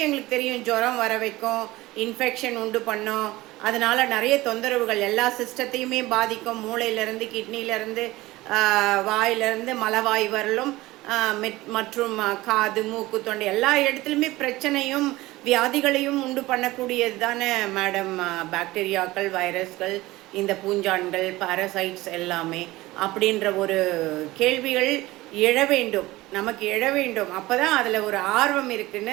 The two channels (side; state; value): left; quieter; 18.8 dB